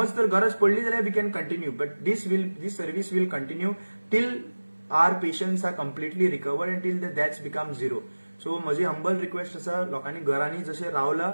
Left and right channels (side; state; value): both; inverted; correlation -1.00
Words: तर गरज पडली जाल्यार we can continue but this service will continue till our patients are completely recovered and till the that's become zero so म्हजी humble request आसा लोकांनी घरांनी जशें रावला